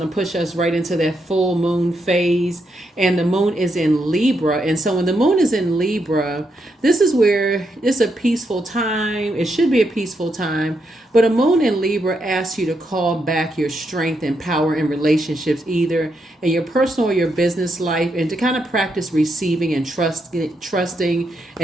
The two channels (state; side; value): normal; both; correlation 0.81